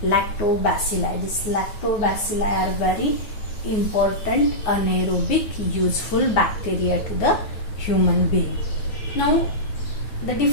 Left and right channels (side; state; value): right; late; 9.6 ms